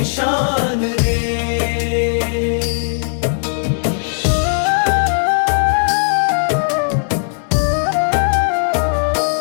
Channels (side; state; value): right; silent; 67 dB below the other